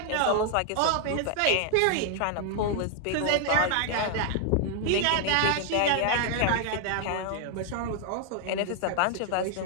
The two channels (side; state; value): both; different; correlation 0.00